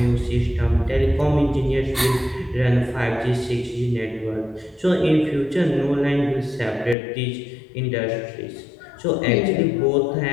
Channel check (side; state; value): right; drops out; at 7.0 s